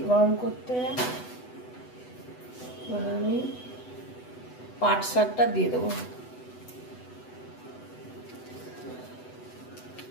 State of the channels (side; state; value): right; late; 8.0 ms